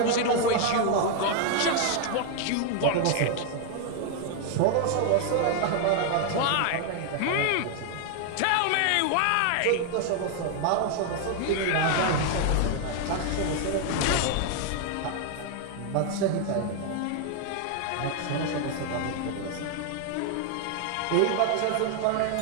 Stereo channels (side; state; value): both; different; correlation 0.00